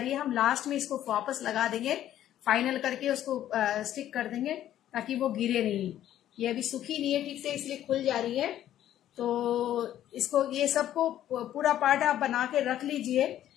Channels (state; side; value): quieter; right; 12.0 dB